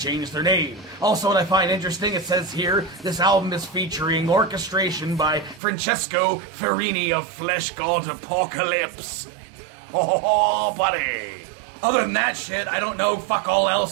their name. Also, what I find interesting, it says here, this album is featuring orchestration by Francesco Ferrini of Flesh God Apocalypse. Oh, buddy. Other than that shit, I don't know fuck all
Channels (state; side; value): drops out; left; at 5.6 s